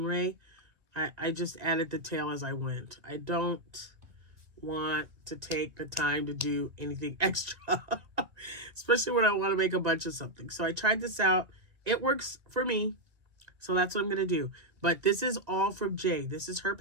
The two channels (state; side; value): late; left; 2.1 ms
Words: I just added the tail as I went. I don't want to take the time to do anything extra, especially when I want to make a bunch of something. So I tried this out. It works for me. So that's what I'm going to do. But this is All From Jade. This is her